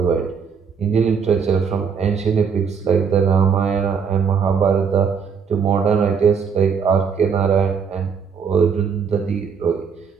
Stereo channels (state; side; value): quieter; left; 6.3 dB